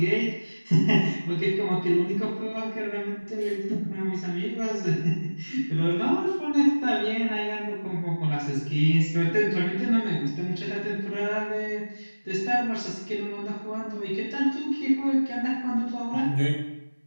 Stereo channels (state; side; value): inverted; both; correlation -1.00